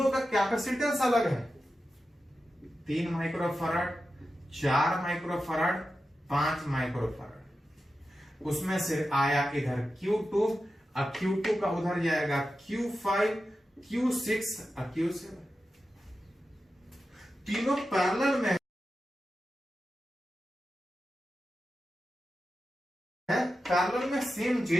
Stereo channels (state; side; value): normal; both; correlation 0.91